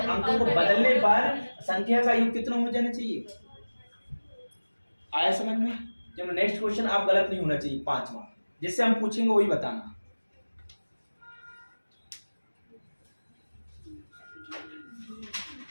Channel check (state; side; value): inverted; both; correlation -1.00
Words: को बदलने पर संख्या का योग कितना हो जाना चाहिए, आया समझ में। चलो नेक्स्ट क्वेश्चन, आप गलत नहीं होना चाहिए, 5वां, जिससे हम पूछेंगे वही बताना।